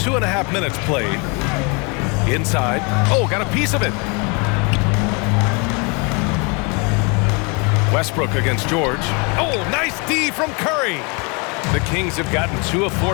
minutes played. Inside. Oh, got a piece of it. Westbrook against George. Oh, nice D from Curry. The Kings have gotten 2 of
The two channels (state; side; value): quieter; right; 32.0 dB